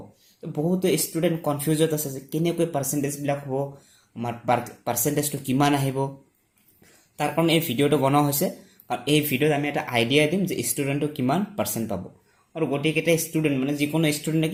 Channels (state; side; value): identical; both; correlation 1.00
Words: তো বহুত ষ্টুডেণ্ট কনফিউজড আছে যে কেনেকৈ পাৰ্চেণ্টেজ বিলাক হ'ব আমাৰ পাৰ্চেণ্টেজটো কিমান আহিব তাৰ কাৰণে এই ভিডিঅ'টো বনোৱা হৈছে আৰু এই ভিডিঅ'ত আমি এটা আইডিয়া দিম যে ষ্টুডেণ্টটো কিমান পাৰ্চেণ্ট পাব আৰু গোটেইকেইটা ষ্টুডেণ্ট মানে যিকোনো ষ্টুডেণ্টে